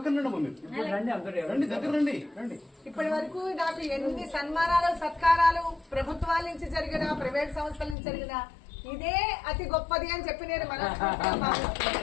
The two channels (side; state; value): right; drops out; at 8.0 s